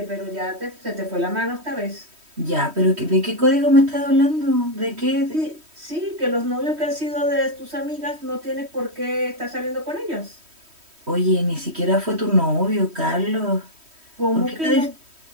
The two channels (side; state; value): left; late; 3.1 ms